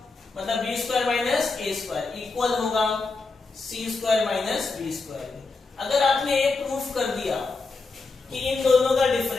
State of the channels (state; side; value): quieter; right; 4.0 dB